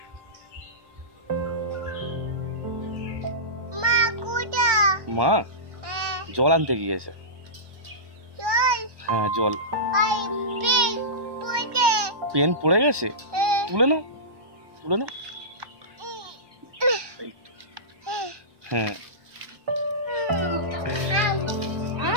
মা কোটা মা জল আনতে গিয়েছে। চল হ্যাঁ জল। আই পিক পড়ে পেন পড়ে গেছে, তুলে নাও তুলে নাও। এই তো। হ্যাঁ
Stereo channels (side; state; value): left; late; 1.1 ms